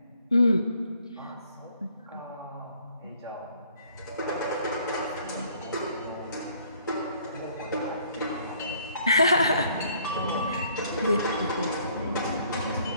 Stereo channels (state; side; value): inverted; both; correlation -0.62